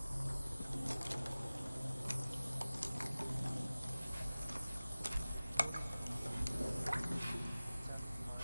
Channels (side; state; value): both; inverted; correlation -0.98